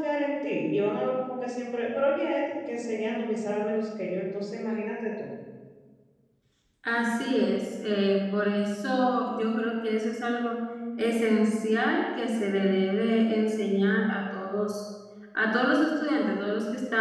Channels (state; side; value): identical; both; correlation 1.00